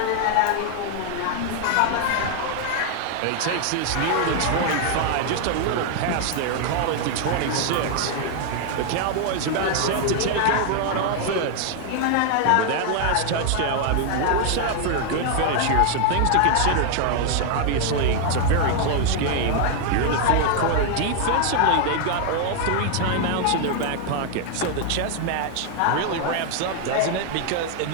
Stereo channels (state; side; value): different; both; correlation 0.00